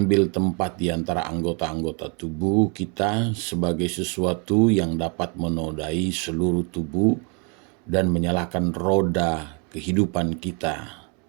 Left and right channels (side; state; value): left; quieter; 34.7 dB